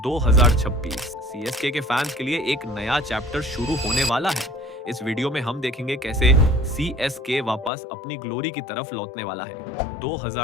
2026 CSK के fans के लिए एक नया चैप्टर शुरू होने वाला है। इस वीडियो में हम देखेंगे कैसे सीएसके वापस अपनी ग्लोरी की तरफ लौटने वाला है।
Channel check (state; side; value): drops out; right; at 7.7 s